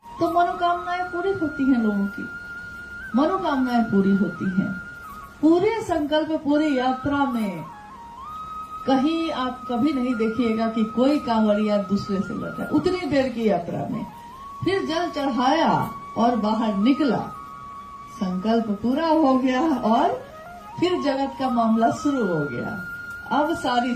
तो मनोकामनाएं पूरी होती हैं, लोगों की मनोकामनाएं पूरी होती हैं। पूरे संकल्प, पूरी यात्रा में कहीं आप कभी नहीं देखिएगा कि कोई कांवड़िया दूसरे से लड़ा। उतनी देर की यात्रा में फिर जल चढ़ाया और बाहर निकला, संकल्प पूरा हो गया और फिर जगत का मामला शुरू हो गया। अब सारी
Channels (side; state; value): both; identical; correlation 1.00